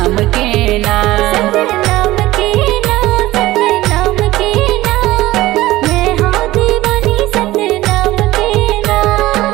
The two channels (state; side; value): quieter; left; 17.1 dB